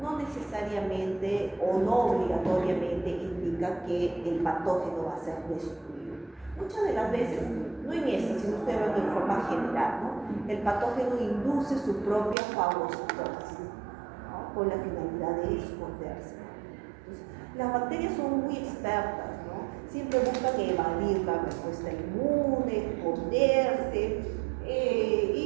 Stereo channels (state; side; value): drops out; left; at 12.4 s